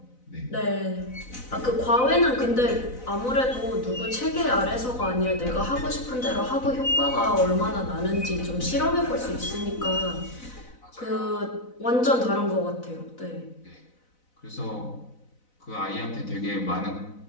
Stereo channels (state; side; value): late; right; 4.0 ms